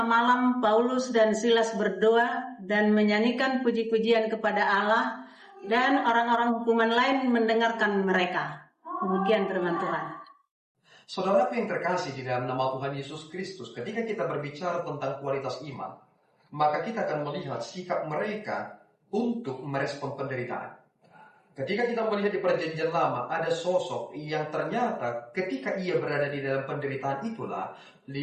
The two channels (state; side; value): identical; both; correlation 1.00